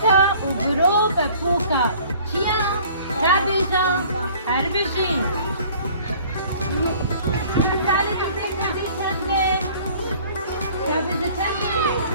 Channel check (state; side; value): inverted; both; correlation -0.52